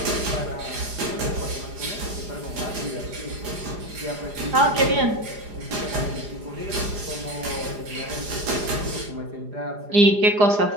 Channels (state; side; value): late; left; 4.9 ms